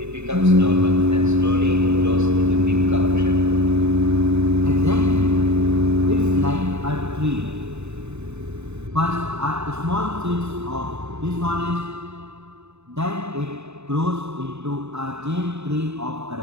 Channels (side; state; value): left; late; 0.81 ms